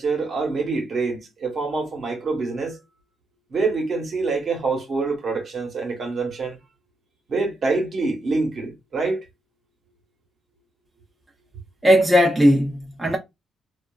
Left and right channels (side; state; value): both; normal; correlation 0.84